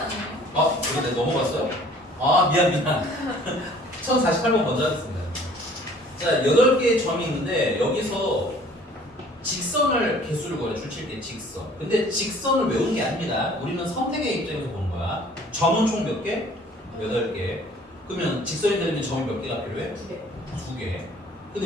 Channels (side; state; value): both; normal; correlation 0.53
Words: 이거 내가 넘어갔어요? 미안 1048번 먼저 하겠습니다. 자 8개의 점이 있는데 여기서 직선을 개수를 구해 줄칠 때 직선. 근데 직선을 외우는 게 아닙니다. 우리는 선택의 입장에서 보는 거야. 점은 총 몇 개? 8개. 그러면 직선이 되려면 점이 몇 개가 필요해? 2개. 2개.